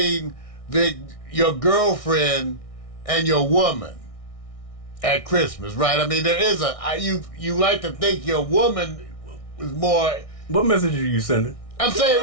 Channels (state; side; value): late; right; 1.6 ms